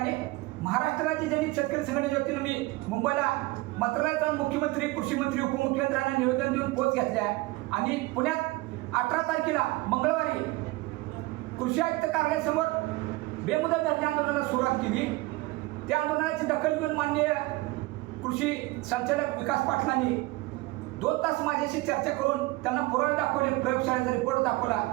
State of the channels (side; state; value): left; quieter; 21.0 dB